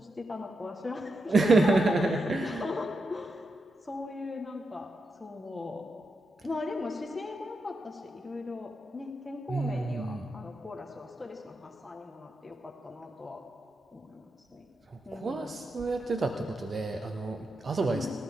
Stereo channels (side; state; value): both; normal; correlation 0.86